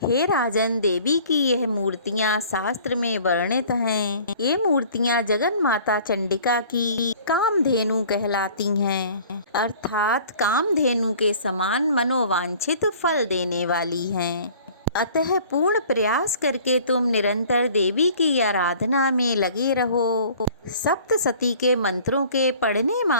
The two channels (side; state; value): both; inverted; correlation -0.50